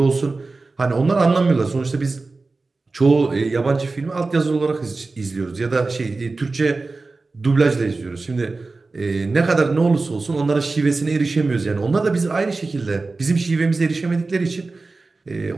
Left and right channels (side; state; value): left; quieter; 3.7 dB